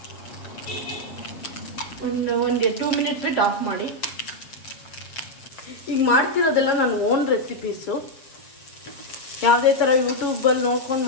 ಒಂದು 2 ಮಿನಿಟ್ ಬಿಟ್ಟು ಆಫ್ ಮಾಡಿ. ಈಗ ಮಾಡ್ತಿರೋದೆಲ್ಲ ನನ್ನ ಓನ್ ರೆಸಿಪೀಸು, ಯಾವುದೇ ಥರ ಯೂಟ್ಯೂಬಲ್ಲಿ ನೋಡ್ಕೊಂಡು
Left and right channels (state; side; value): late; right; 7.4 ms